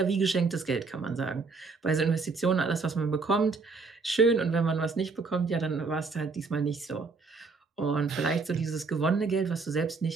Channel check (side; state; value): left; quieter; 4.3 dB